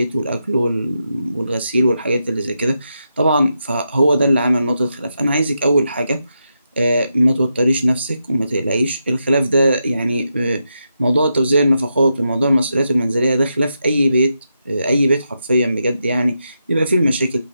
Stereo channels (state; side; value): inverted; both; correlation -0.85